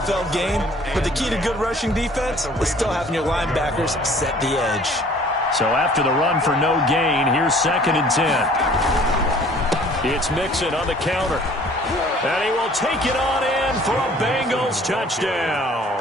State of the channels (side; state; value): both; normal; correlation 0.53